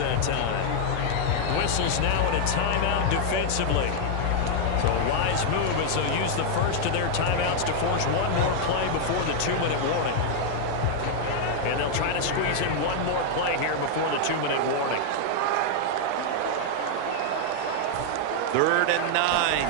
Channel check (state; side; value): different; both; correlation 0.00